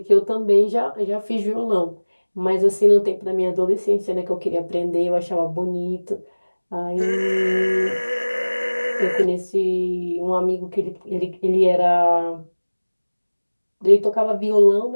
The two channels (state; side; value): inverted; both; correlation -1.00